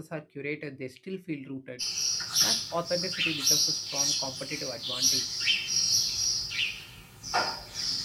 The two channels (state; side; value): identical; both; correlation 1.00